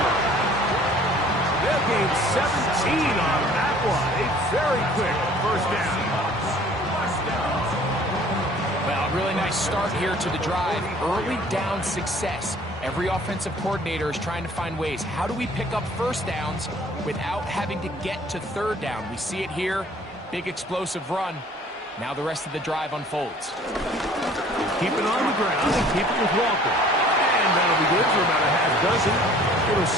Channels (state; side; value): normal; both; correlation 0.53